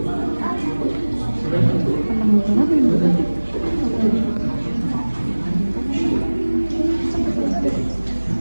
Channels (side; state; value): both; inverted; correlation -1.00